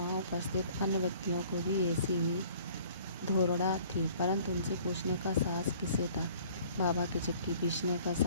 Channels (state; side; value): inverted; both; correlation -0.53